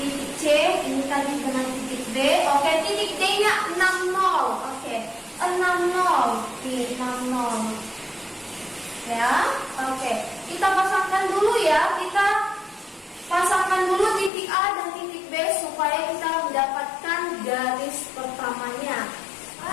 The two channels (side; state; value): right; drops out; at 14.3 s